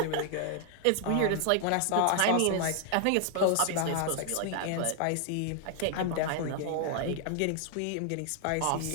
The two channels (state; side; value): different; both; correlation 0.00